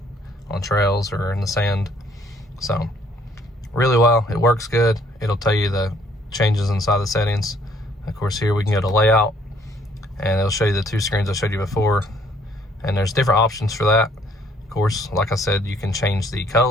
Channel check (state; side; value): normal; both; correlation 0.63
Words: on trails or in the sand. So really well, it works good. It'll tell you the changes inside the settings. Of course, here we can go to layout and it'll show you the 2 screens I showed you before, and there's different options for that. Of course, like I said, you can change the